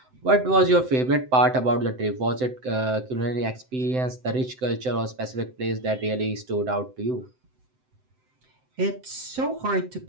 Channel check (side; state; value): left; late; 7.8 ms